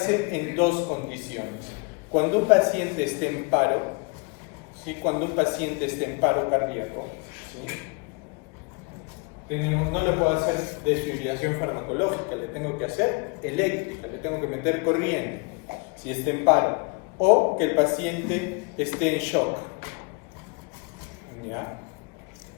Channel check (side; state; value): right; quieter; 30.9 dB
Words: en dos condiciones: cuando un paciente esté en paro, ¿sí? Cuando un paciente esté en paro cardíaco, ¿sí? No le puedo hacer desfibrilación farmacológica, le tengo que hacer eléctrica, le tengo que meter corriente, si está en paro, o que el paciente esté en shock. ¿Ya?